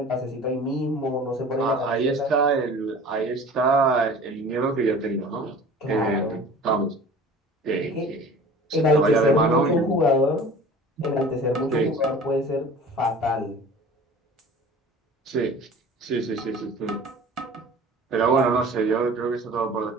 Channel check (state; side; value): normal; both; correlation 0.42